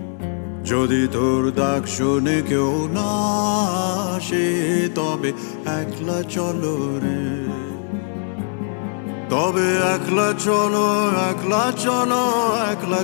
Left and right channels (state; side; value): silent; right; 65 dB below the other